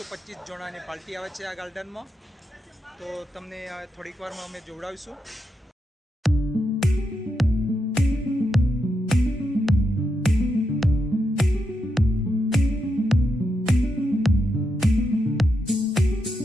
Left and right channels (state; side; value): normal; both; correlation 0.84